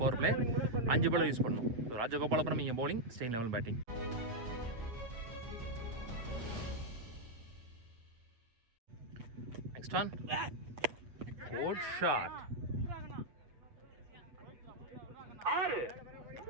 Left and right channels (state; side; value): late; left; 8.3 ms